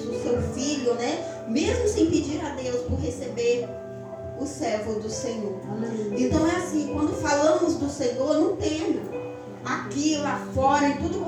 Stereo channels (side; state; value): both; identical; correlation 1.00